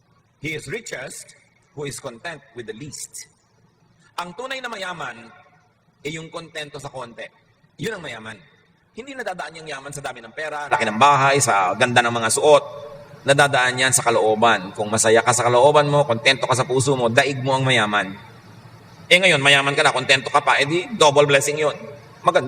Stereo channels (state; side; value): identical; both; correlation 1.00